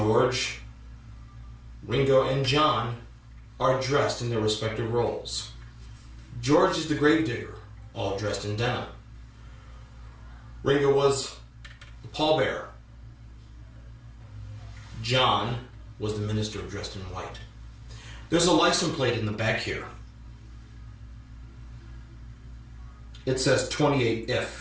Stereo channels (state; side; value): identical; both; correlation 1.00